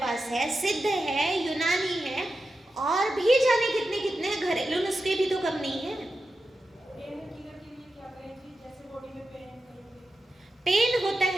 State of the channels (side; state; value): both; normal; correlation 0.91